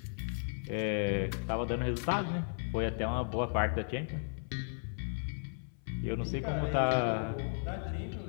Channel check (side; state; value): right; silent; 54 dB below the other